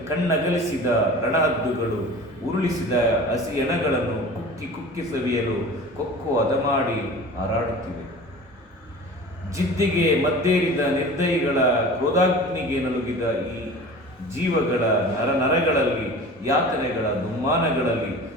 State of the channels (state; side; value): normal; both; correlation 0.39